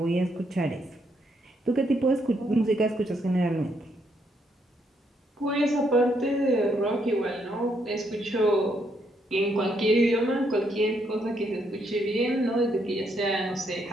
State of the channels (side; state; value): both; normal; correlation 0.75